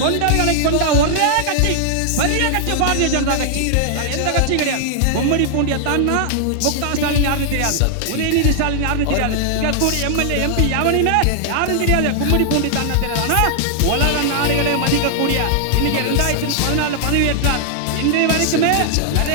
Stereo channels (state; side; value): different; both; correlation 0.00